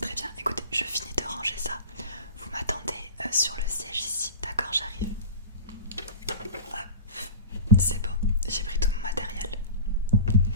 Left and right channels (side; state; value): both; inverted; correlation -0.33